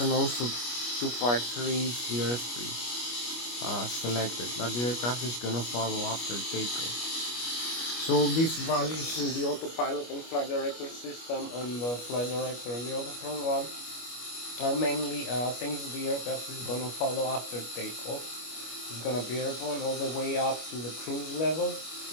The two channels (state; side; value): late; right; 25 ms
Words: also 253 is the airspeed selected, but the aircraft is gonna follow after takeoff. So these values in the autopilot and flight director system and the flight director and the autothrottle one are mainly things the aircraft is gonna follow after takeoff. It's gonna be airborne all the way up to the cruise level,